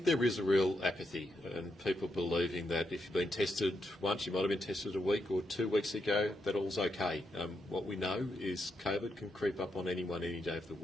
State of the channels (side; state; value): both; normal; correlation 0.82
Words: there is a real apathy and people believing that if you've been tested once, you might have been tested a week or 2 weeks ago, that all's okay. What we know is COVID can creep up on anyone any day of the